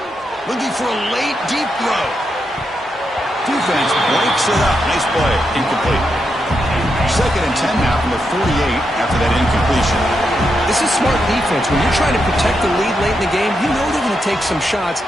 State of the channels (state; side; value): normal; both; correlation 0.84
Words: Looking for a late, deep throw. Defense breaks it up. Nice play. Incomplete. Second and 10 now from the 48 after that incompletion. This is smart defense. When you're trying to protect the lead late in the game, you know they're going to take some shots.